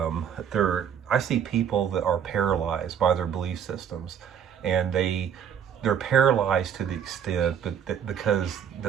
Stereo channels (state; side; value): quieter; left; 8.4 dB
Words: I see people that are paralyzed by their belief systems, and they're paralyzed to the extent because